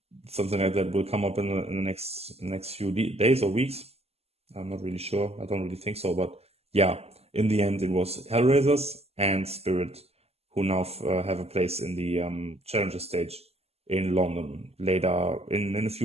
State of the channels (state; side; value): late; left; 0.29 ms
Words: something like that will come up in the next few days or weeks. I'm not really sure. I don't really think so, but yeah, in the end, it was HellRaisers and Spirit who now have a place in the challenger stage in London later in a